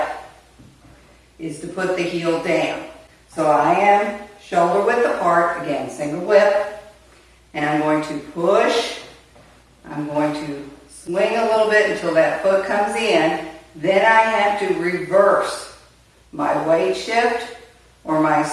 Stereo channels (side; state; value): both; identical; correlation 1.00